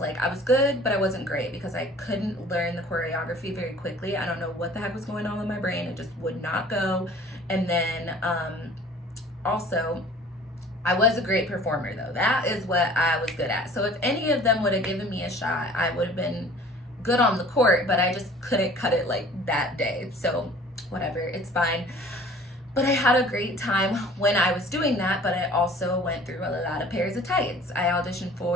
I was good, but I wasn't great because I couldn't learn the choreography very quickly. I don't know what the heck was going on with my brain. It just would not go. And then also, I was a great performer, though. That is what I was good at. So if any of them would have given me a shot, I would have been good on the court, but I just couldn't cut it like that day. So whatever, it's fine. But I had a great time when I was doing that, but I also went through a lot of pairs of tights. I auditioned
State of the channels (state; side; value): normal; both; correlation 0.48